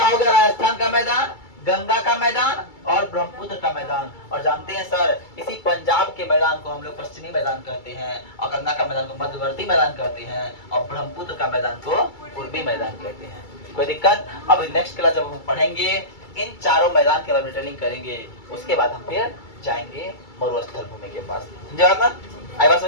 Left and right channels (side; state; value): right; late; 2.3 ms